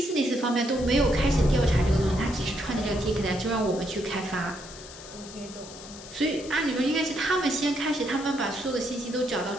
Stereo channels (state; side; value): noise; left; hiss, 16 dB below the sound